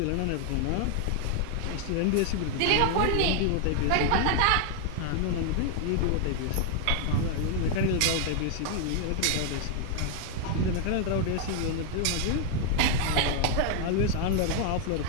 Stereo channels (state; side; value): different; both; correlation 0.00